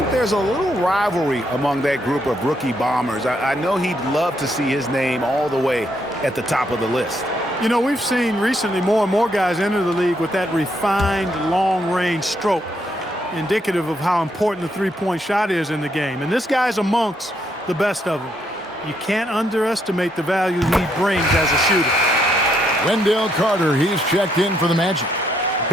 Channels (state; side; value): normal; both; correlation 0.75